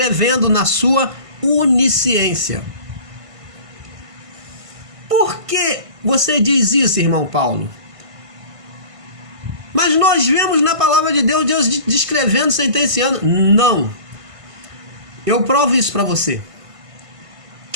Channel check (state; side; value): late; left; 1.5 ms